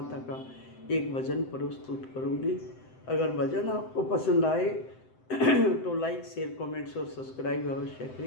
का एक भजन प्रस्तुत करूंगी। अगर भजन आपको पसंद आए तो लाइक, शेयर, कमेंट्स और सब्सक्राइब अवश्य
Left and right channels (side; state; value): right; late; 7.8 ms